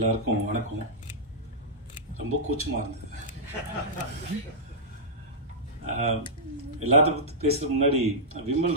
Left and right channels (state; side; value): normal; both; correlation -0.11